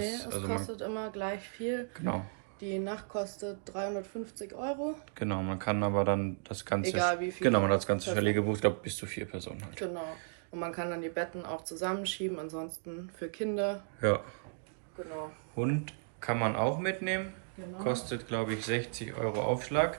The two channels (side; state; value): left; silent; digital silence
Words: es Also kostet immer gleich viel. Genau. Die Nacht kostet 350 €. Genau, man kann aber dann das ganze. Egal wie viel. Genau, man hat das ganze Chalet gebucht, ich glaube bis zu 4 Personen halt. Genau. Und man kann dann die Betten auch zusammenschieben, ansonsten für Kinder. Ja. Genau. Hund kann man auch mitnehmen. Genau. Kostet, glaube ich, 60 €